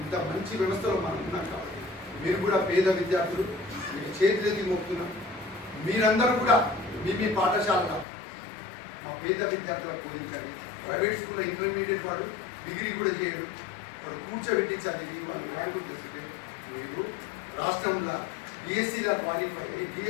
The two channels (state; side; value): drops out; right; at 8.1 s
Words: ఇంత మంచి వ్యవస్థలో మనం ఉన్నాం కాబట్టి మీరు కూడా పేద విద్యార్థులు మీకు చేతులెత్తి మోపుతున్నాం మీరందరూ కూడా మీ పాఠశాలలో మా పేద విద్యార్థులకు బోధించండి. ప్రైవేట్ స్కూల్లో ఇంటర్మీడియట్ వాడు డిగ్రీ కూడా చేయడు వాడు కూర్చోబెట్టి చదివి వాళ్ళు ర్యాంకులు తెస్తే మీరు రాష్ట్రంలో డిఎస్సీలో క్వాలిఫై అయ్యి